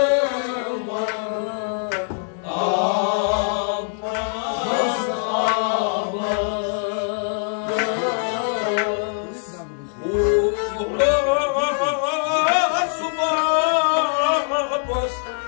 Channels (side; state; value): right; silent; digital silence